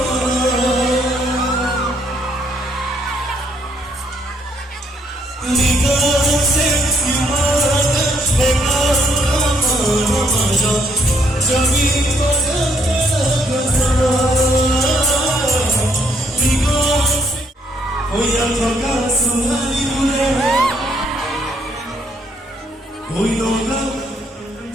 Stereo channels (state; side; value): normal; both; correlation 0.70